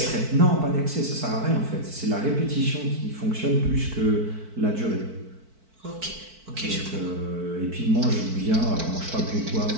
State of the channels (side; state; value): left; late; 4.5 ms